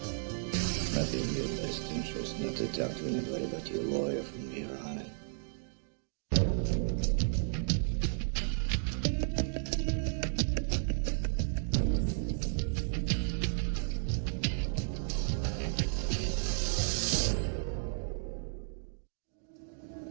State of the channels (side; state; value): left; silent; digital silence